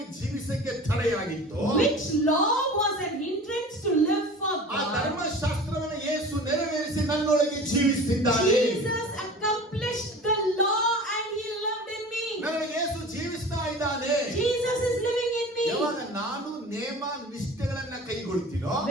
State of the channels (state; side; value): normal; both; correlation 0.39